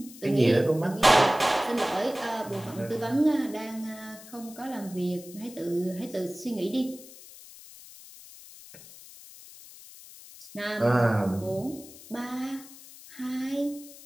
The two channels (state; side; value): noise; left; hiss, 18 dB below the sound